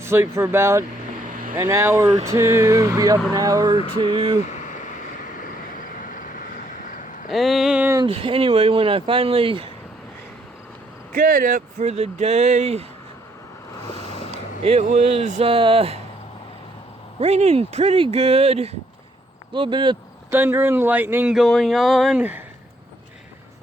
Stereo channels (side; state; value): both; normal; correlation 0.69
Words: for about an hour or two, be up an hour or two. And anyway, when I finally got up for the day, it was raining pretty good. A little bit of thunder and lightning going on.